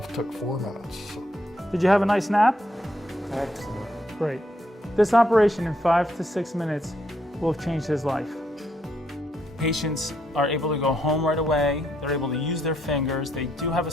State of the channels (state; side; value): normal; both; correlation 0.75